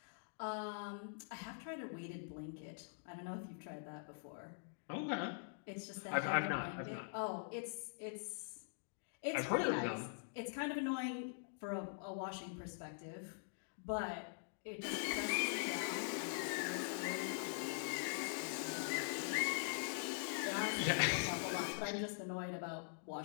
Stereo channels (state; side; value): silent; right; digital silence